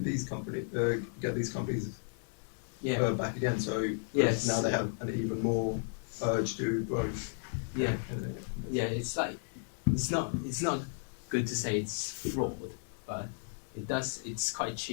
these companies Yeah. back again, so Yes. now they have an even more urge to growth. Yeah. And then- Yeah, it's like it's not good to say it's fraud, but it's quite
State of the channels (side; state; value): right; silent; 55 dB below the other